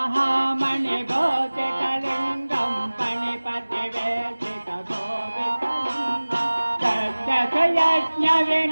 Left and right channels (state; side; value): inverted; both; correlation -1.00